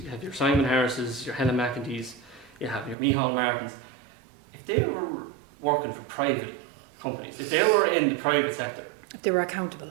have your Simon Harrises, your Helen McEntees, you have your Micheál Martins, if they were working for private companies, if they were in the private sector, they were accountable.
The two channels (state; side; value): drops out; left; at 3.0 s